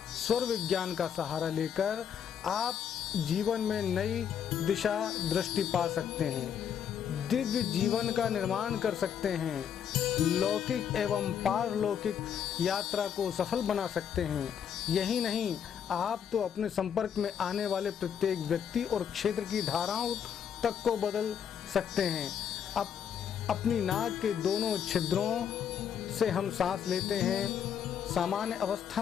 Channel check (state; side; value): quieter; right; 8.4 dB